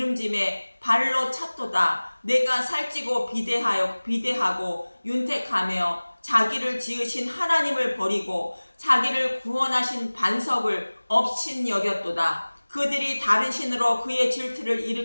발로 찼도다. 내가 살찌고 비대하고 윤택하며 자기를 지으신 하나님을 버리고 자기를 구원하신 반석을 업신 여겼도다. 그들이 다른 신으로 그의 질투를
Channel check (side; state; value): both; inverted; correlation -1.00